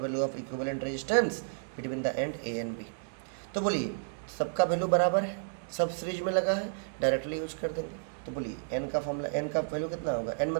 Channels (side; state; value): left; silent; digital silence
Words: value of equivalent resistance between the end A and B। तो बोलिए सबका वैल्यू बराबर है, सब सीरीज में लगा है, डायरेक्टली यूज कर देंगे। तो बोलिए n का फॉर्मूला, n का वैल्यू कितना होगा? n